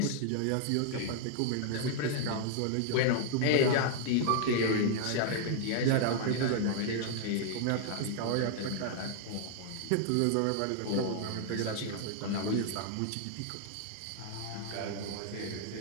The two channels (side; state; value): both; different; correlation 0.00